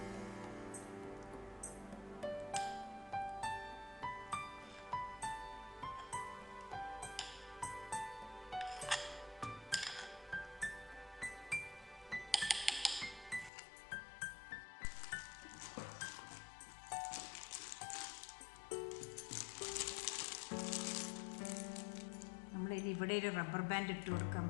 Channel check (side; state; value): right; drops out; at 13.5 s